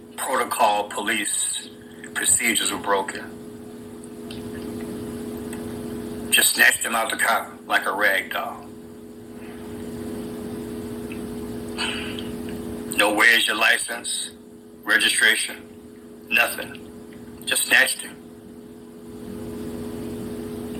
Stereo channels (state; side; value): identical; both; correlation 1.00